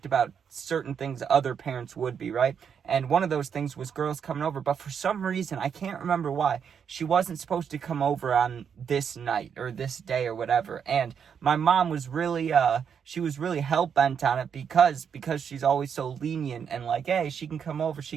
about certain things other parents would be, right? And one of those things was girls coming over, but for some reason, I can't remember why, she wasn't supposed to come over on this night or this day or whatever. And my mom was really, she was really hell-bent on it because she's always so lenient and like, hey, she can come over.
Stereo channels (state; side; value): quieter; left; 7.3 dB